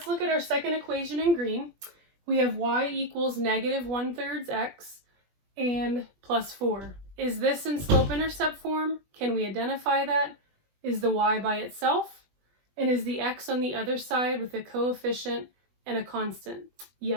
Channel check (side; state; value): left; late; 20 ms